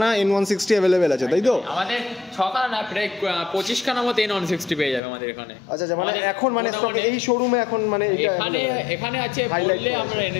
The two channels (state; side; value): drops out; right; at 5.0 s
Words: N160 অ্যাভেলেবেল আছে, তাই তো? আমাদের 6খানা না, প্রায় 25খানা মতো N160 পেয়ে যাবে আমাদের এখানে। আচ্ছা আচ্ছা, মানে এখন মানে স্টকে এই শোরুমে এখন মানে এখানে আছে, বললে আমরা এনে